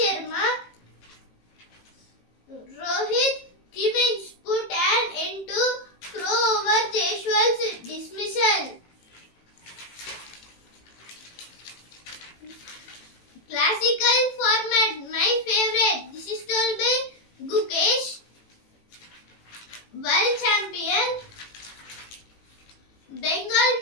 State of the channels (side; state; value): right; late; 18 ms